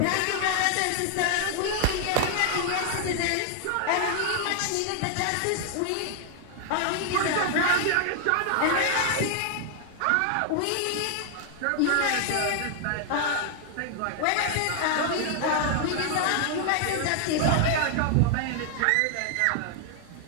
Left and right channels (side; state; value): both; different; correlation 0.00